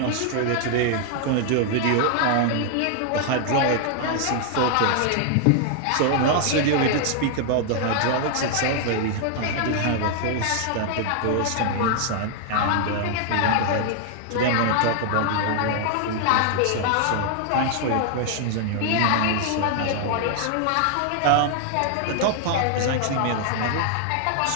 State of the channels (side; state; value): both; different; correlation 0.00